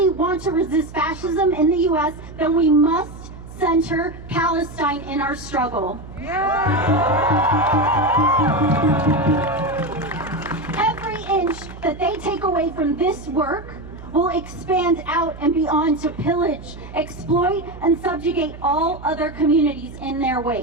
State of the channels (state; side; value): noise; right; hum, 15 dB below the sound